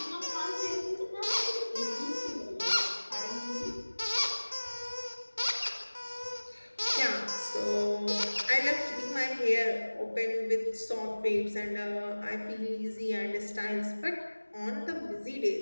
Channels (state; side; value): inverted; both; correlation -1.00